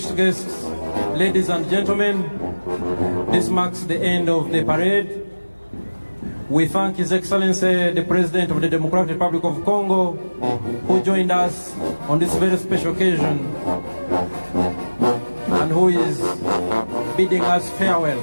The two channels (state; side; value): inverted; both; correlation -1.00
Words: guests, ladies and gentlemen, this marks the end of the parade. We thank His Excellency, the President of the Democratic Republic of Congo, who joined us on this very special occasion and who is bidding us